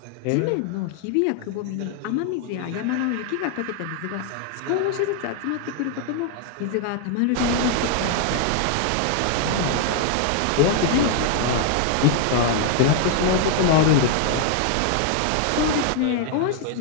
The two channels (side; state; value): both; different; correlation 0.00